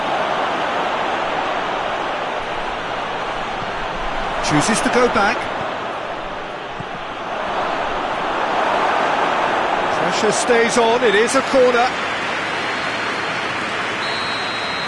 Chooses to go back. Pressure stays on, it is a corner.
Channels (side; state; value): both; identical; correlation 1.00